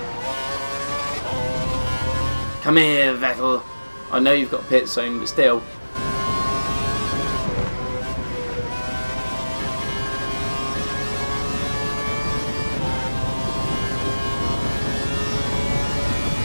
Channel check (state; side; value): inverted; both; correlation -1.00